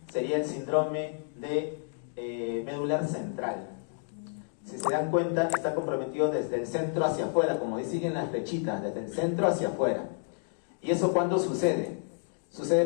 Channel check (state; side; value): silent; right; 58 dB below the other